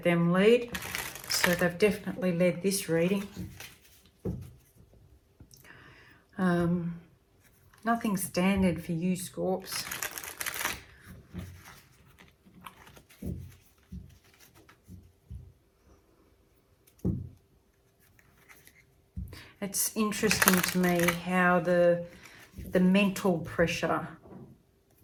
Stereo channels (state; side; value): identical; both; correlation 1.00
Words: them lead. So they've definitely led this reading. Nothing standard for you, Scorps. It's interesting to me how the mental pressure,